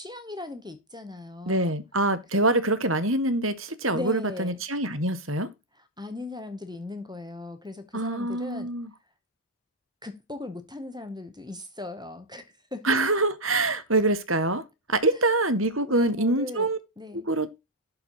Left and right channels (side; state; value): both; normal; correlation -0.01